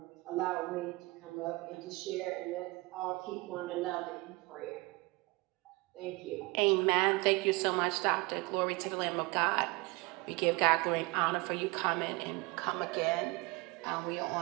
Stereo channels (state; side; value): quieter; left; 24.8 dB